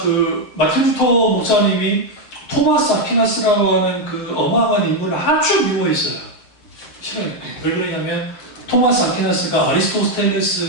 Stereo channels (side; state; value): right; late; 7.7 ms